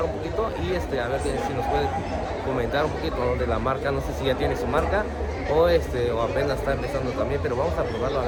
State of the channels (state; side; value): identical; both; correlation 1.00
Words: un poquito y a ver si nos puede comentar un poquito, ¿no?, de la marca. No sé si ya tiene su marca o apenas está empezando también, pero vamos a probarlo a